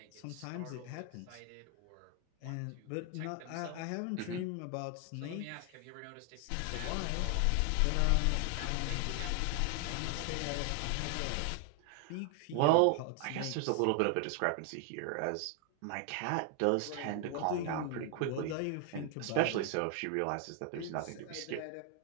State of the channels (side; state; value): both; different; correlation 0.00